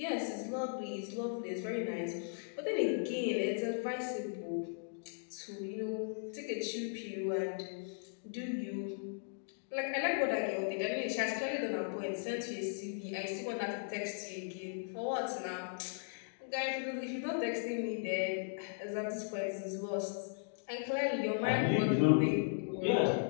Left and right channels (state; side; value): silent; right; digital silence